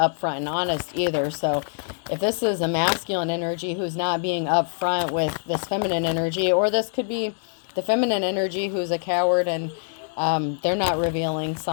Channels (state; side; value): silent; right; digital silence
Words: and honest either. So if this is a masculine energy who's not being upfront with this feminine energy, or this could be the feminine energy who's a coward and they're not revealing